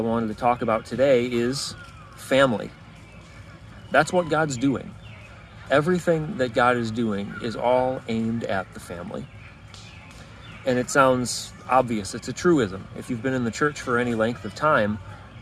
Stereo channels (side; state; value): both; identical; correlation 1.00